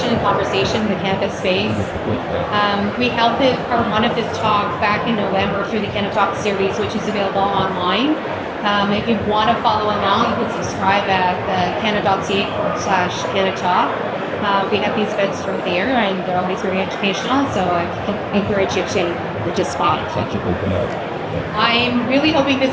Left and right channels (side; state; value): both; identical; correlation 1.00